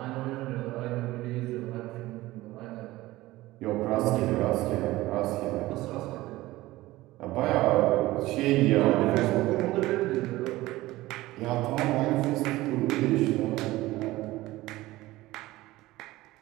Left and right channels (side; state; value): left; quieter; 17.9 dB